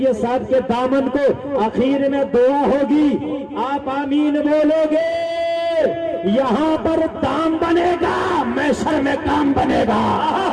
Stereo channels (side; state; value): both; identical; correlation 1.00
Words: صاحب کے دامن کو، آخر میں دعا ہوگی، آپ آمین بولو گے، یہاں پر دام بنے گا، محشر میں کام بنے گا.